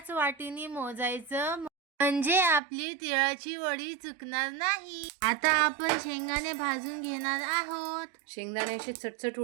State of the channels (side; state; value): left; drops out; at 2.6 s